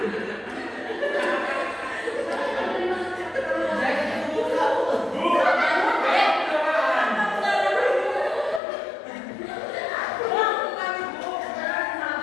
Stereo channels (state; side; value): drops out; right; at 8.6 s